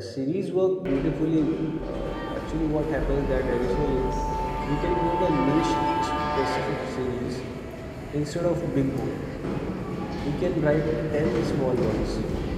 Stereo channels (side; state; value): both; identical; correlation 1.00